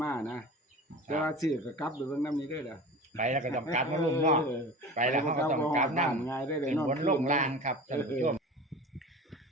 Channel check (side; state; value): both; normal; correlation 0.36